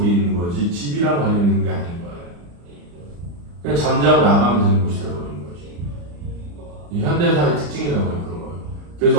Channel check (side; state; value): left; late; 35 ms